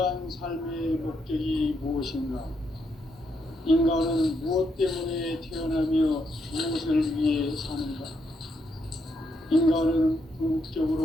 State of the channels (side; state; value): both; normal; correlation 0.78